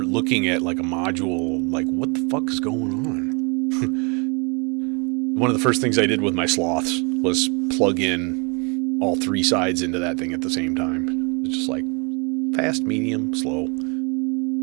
looking at like a module, like what the fuck is going on? One of the first things I did with my sloths was plug in all 3 sides into that thing at the same time. It's just like fast, medium, slow.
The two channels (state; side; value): quieter; left; 32.5 dB